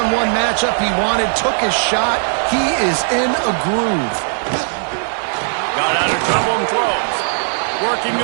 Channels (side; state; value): left; silent; 55 dB below the other